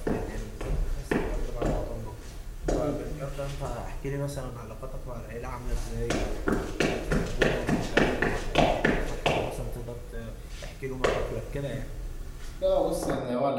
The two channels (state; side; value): identical; both; correlation 1.00